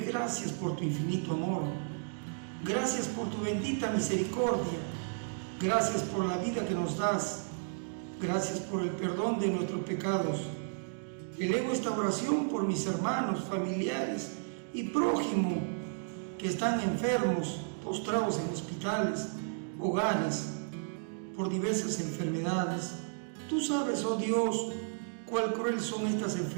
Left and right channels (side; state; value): left; silent; digital silence